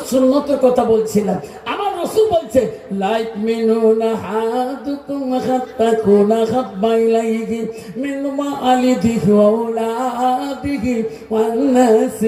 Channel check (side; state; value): both; identical; correlation 1.00